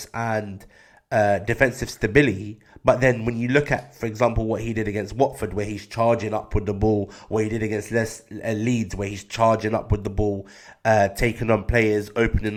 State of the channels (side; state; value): both; identical; correlation 1.00